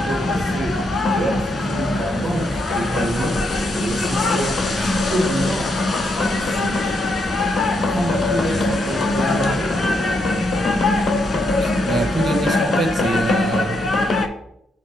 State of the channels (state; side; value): normal; both; correlation 0.79